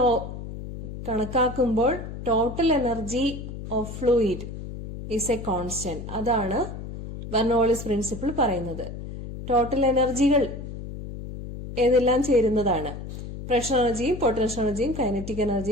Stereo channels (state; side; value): noise; left; hum, 9 dB below the sound